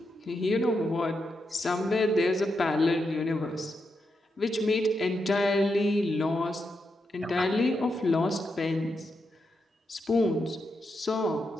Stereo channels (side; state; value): both; normal; correlation 0.84